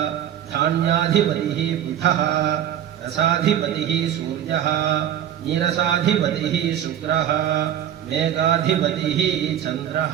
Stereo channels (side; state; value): left; quieter; 10.4 dB